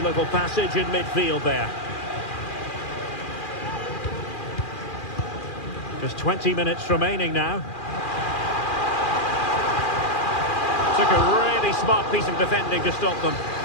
passage in midfield there. Just 20 minutes remaining now. Took a really smart piece of defending to stop them.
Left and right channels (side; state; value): right; late; 2.4 ms